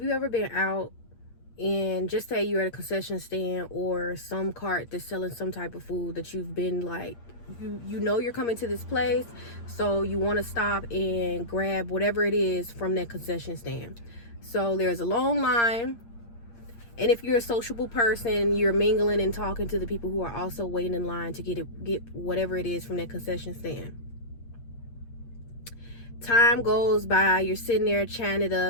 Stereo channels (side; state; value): right; late; 8.6 ms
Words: you ever been out and just say you're at a concession stand or some cart that's selling some type of food that you've been like, you know you're coming to this place, so you want to stop and grab whatever it is from that concession stand. So there's a long line, and if you're a sociable person, you're mingling and talking to the people who are also waiting in line to get whatever it is from that concession stand. Time goes by, you're sitting there chatting it